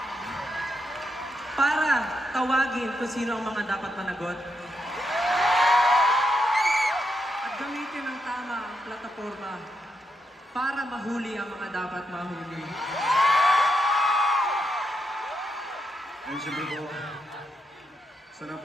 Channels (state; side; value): normal; both; correlation 0.82